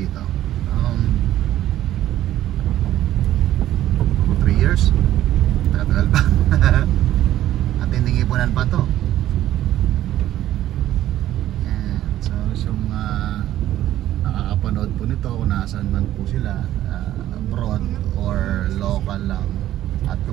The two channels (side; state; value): left; quieter; 13.1 dB